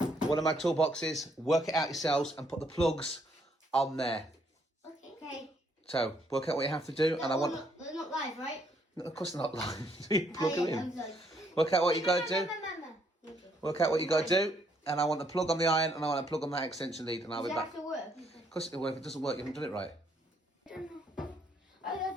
One of my toolboxes. Work it out yourselves and put the plugs on there. Okay. So work out what you have to do, and I want. They're not live, right? No, of course they're not live. So you plug them in. I'm sorry. Work out what you got to do. Work out what you got to do, and I want the plug on the iron, and I want a plug on that extension lead, and I'll be back. Does it have to work? Of course it'll work. If it doesn't work, you haven't done it right. I don't know. I've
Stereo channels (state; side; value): normal; both; correlation 0.70